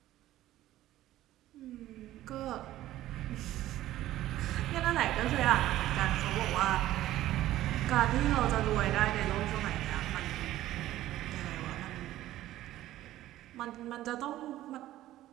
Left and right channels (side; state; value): left; quieter; 14.4 dB